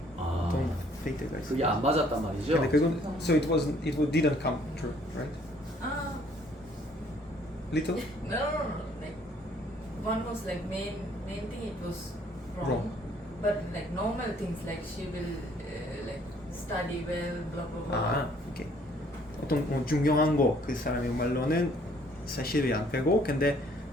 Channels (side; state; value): both; normal; correlation 0.61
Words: 아 어떤 페이트가 있어. 그게 안 맞았단 말이죠? 근데 그건 so it didn't come true, right? Little? No. Like one was like main thing it was wrong. Wrong. But like normal things like she will like study well, blah blah blah. 오케이. 어떤 중요한 거 그 사람의 말로는 사실이 안 되고 근데